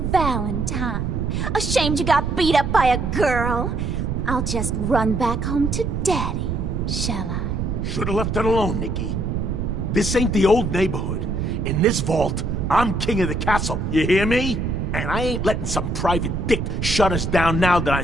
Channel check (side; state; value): right; noise; rumble, 2 dB below the sound